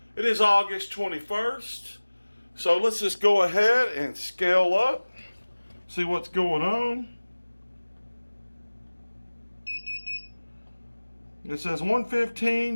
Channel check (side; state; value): both; inverted; correlation -1.00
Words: It is August 21st. So let's just go ahead and scale up, see what's going on. It says